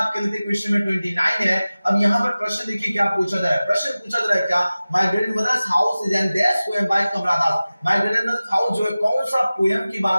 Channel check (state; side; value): inverted; both; correlation -0.97